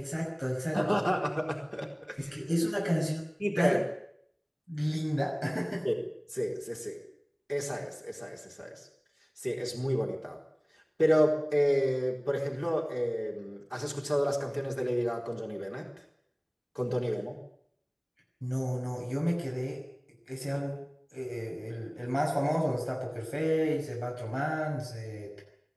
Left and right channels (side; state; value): both; identical; correlation 1.00